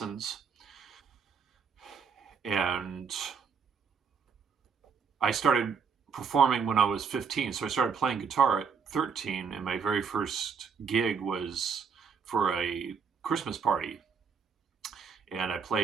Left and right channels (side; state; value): left; quieter; 6.1 dB